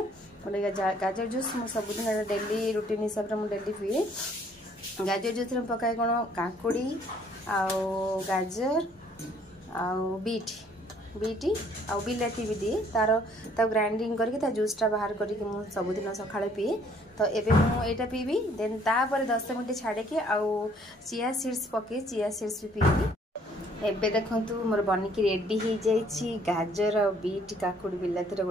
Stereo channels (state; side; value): normal; both; correlation 0.62